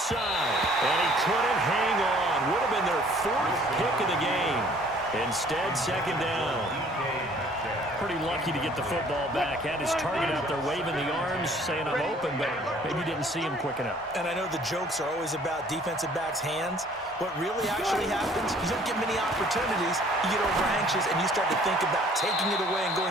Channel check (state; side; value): normal; both; correlation 0.56